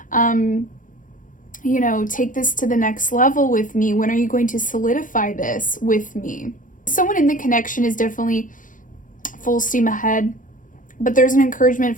take this to the next level with me? When are you going to solidify this with me? Someone in the connection is definitely full steam ahead, but there's an encouragement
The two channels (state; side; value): late; right; 0.38 ms